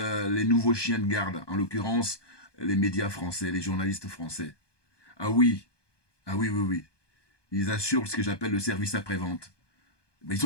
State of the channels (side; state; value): right; late; 1.2 ms